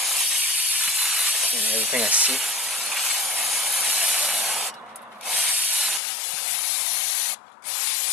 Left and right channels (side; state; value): right; drops out; at 6.0 s